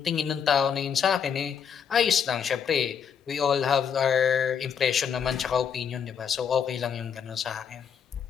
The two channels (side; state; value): right; quieter; 7.3 dB